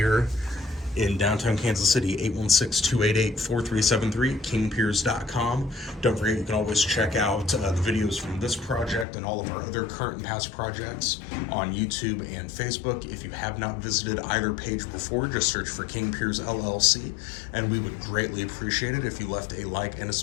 in downtown Kansas City. 816-288-4373, kingpiers.com. Don't forget, you can always check out the videos from this project and all of our other current and past projects on YouTube and Facebook. If you have not visited either page before, just search for King Piers LLC, and we would greatly appreciate it if you left a like and a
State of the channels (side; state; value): right; drops out; at 9.1 s